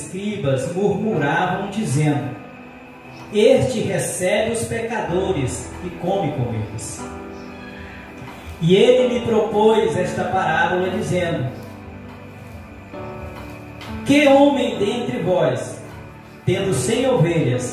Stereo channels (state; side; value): identical; both; correlation 1.00